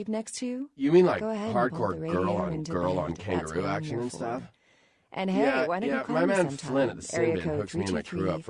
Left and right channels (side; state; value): both; identical; correlation 1.00